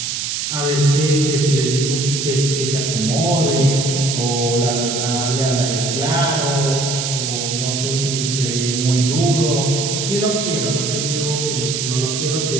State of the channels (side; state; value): right; noise; hiss, 2 dB below the sound